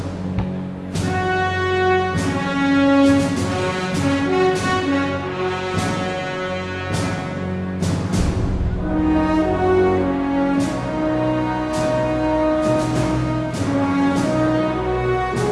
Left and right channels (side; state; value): both; identical; correlation 1.00